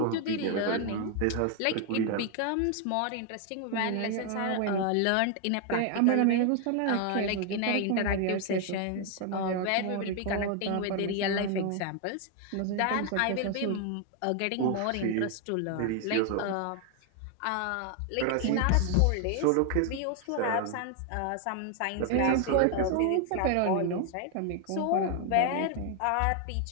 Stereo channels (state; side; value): different; both; correlation 0.00